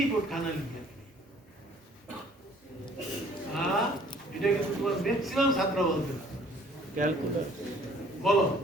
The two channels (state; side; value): normal; both; correlation 0.56